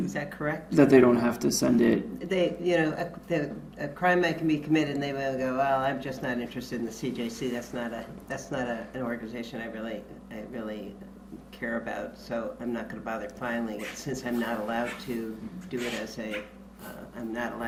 Is that correct? That they don't have to send it. They, you know, a crime might can be committed, and they will go, well, I'm just not interested in the CJC. That's not an organization I really care about. So I'm not going to bother filing it, since I'm not allowed to do it as I'm not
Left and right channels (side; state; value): both; identical; correlation 1.00